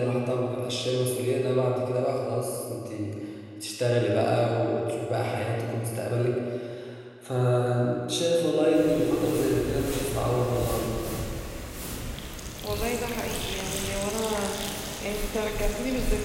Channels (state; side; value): identical; both; correlation 1.00